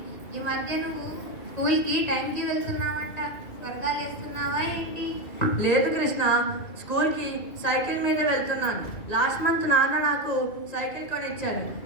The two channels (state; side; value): late; right; 1.9 ms